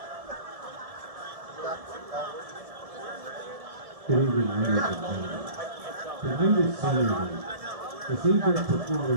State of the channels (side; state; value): left; late; 1.7 ms